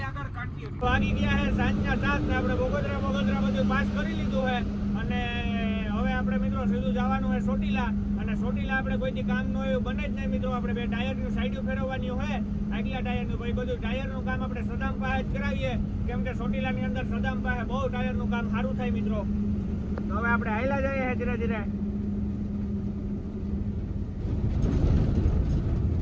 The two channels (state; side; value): identical; both; correlation 1.00